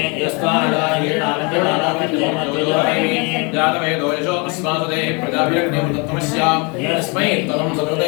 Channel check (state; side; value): quieter; right; 31.2 dB